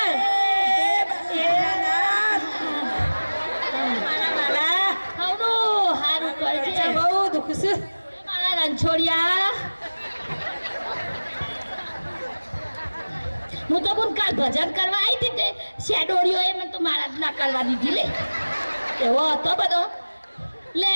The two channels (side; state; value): both; inverted; correlation -1.00